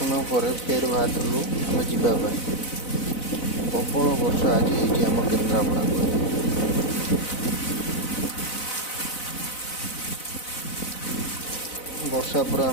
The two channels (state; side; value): late; right; 4.0 ms